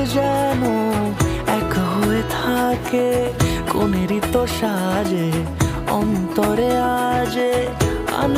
যেন এক হয়ে থাকে। কোনেরই তো সাজে অন্তরে আজে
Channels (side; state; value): both; identical; correlation 1.00